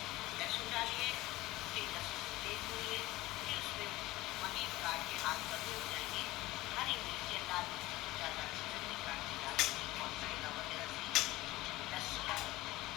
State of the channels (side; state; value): right; quieter; 18.4 dB